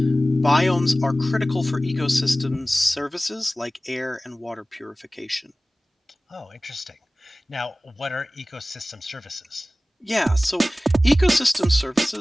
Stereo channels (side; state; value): both; normal; correlation 0.97